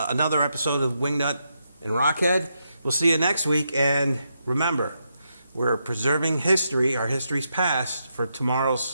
episode of WingNut and RockHead. We'll see you next week. And remember, we're preserving history, our history's past, for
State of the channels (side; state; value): both; inverted; correlation -0.82